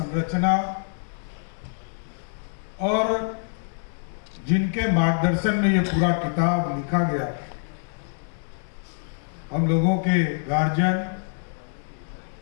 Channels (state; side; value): silent; right; digital silence